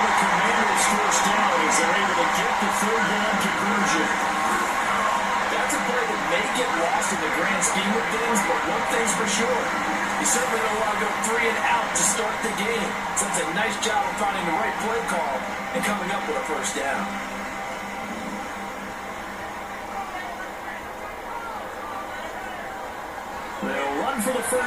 the Commanders first down as they're able to get the 3rd down conversion. That's a play that may get lost in the grand scheme of things, but one thing's for sure. You certainly don't want to go 3 and out to start the game. So it's a nice job of finding the right play call and coming up with a first down. They'll run for the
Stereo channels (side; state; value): both; identical; correlation 1.00